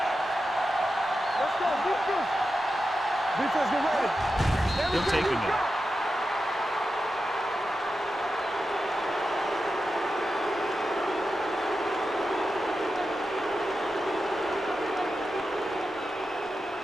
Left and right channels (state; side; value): normal; both; correlation 0.90